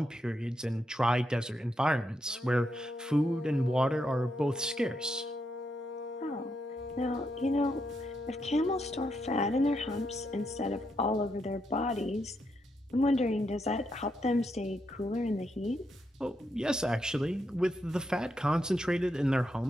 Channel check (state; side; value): normal; both; correlation 0.81